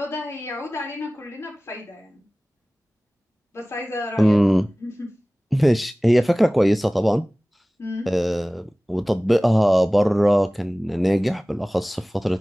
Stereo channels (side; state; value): both; normal; correlation 0.98